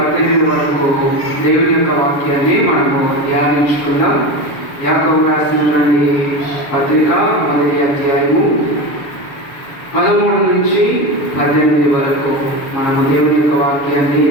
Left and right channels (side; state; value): right; late; 7.0 ms